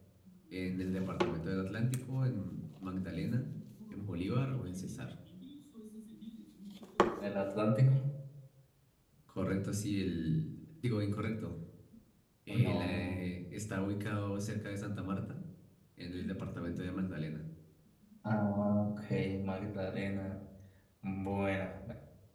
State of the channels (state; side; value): identical; both; correlation 1.00